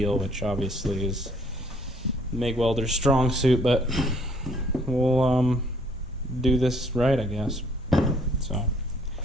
which obviously is MIG welder's strong suit, but we'll do this right, I guess. So,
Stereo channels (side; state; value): both; normal; correlation 0.62